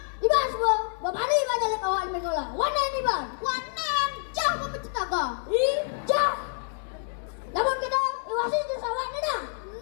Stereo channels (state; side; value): silent; right; digital silence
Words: Iban semua, bapak ni iban jalan awak iban ngolah. Wanen iban, wanen, jauh memecetaga. Jauh. Namun kita iwasi itu sawah ni dah.